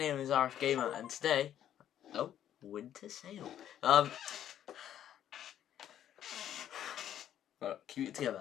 is RF Gamer, and today, winter sale. Keep it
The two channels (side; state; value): right; quieter; 10.7 dB